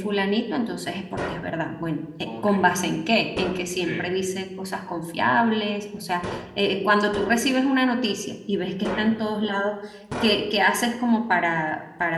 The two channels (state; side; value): identical; both; correlation 1.00